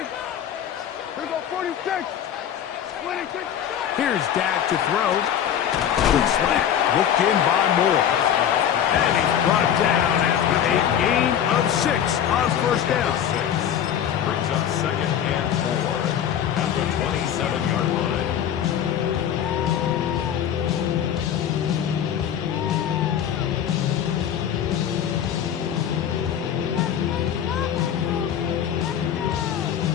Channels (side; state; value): right; quieter; 9.5 dB